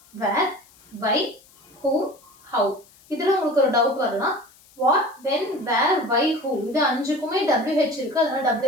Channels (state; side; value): noise; left; hiss, 28 dB below the sound